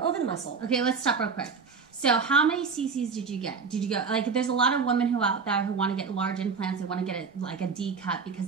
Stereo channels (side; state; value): left; quieter; 5.3 dB